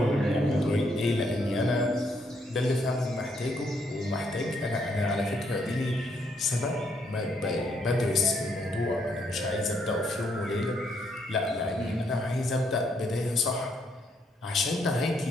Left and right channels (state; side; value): normal; both; correlation 0.73